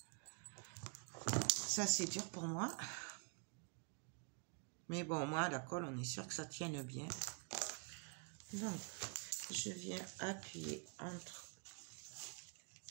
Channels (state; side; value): quieter; left; 35.2 dB